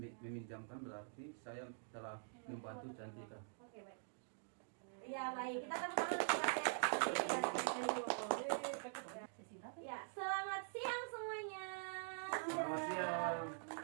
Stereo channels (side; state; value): left; silent; digital silence